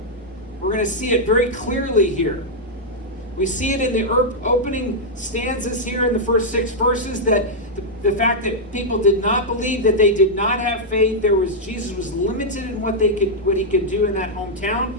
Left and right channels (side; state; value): both; normal; correlation -0.05